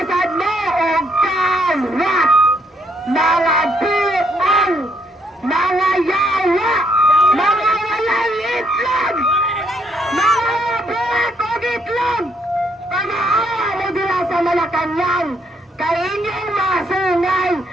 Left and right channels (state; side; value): normal; both; correlation 0.71